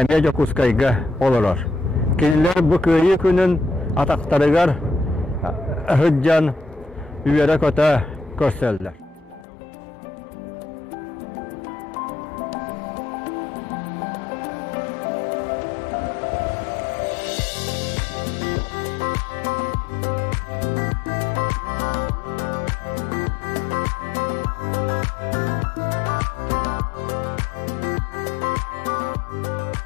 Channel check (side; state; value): right; drops out; at 9.5 s